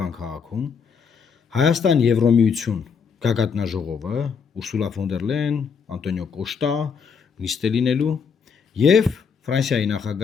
քաղաքում, Հայաստան Եվրոմիություն գագաթնաժողովը, Ուրսուլա ֆոն դեր Լեյեն, Անտոնիո Կոշտա նիստ է լինելու եւ Ֆրանսիայի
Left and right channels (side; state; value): right; quieter; 6.1 dB